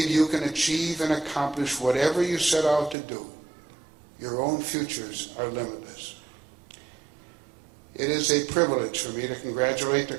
you can achieve and accomplish whatever you set out to do. Your own futures are limitless. It is a privilege for me to congratulate the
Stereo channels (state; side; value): drops out; left; at 3.0 s